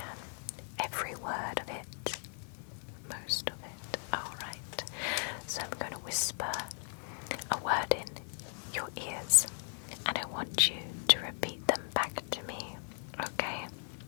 Every word of it. Most of it. Alright. So I'm going to whisper a word in your ears, and I want you to repeat them back to me. Okay?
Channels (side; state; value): right; silent; 53 dB below the other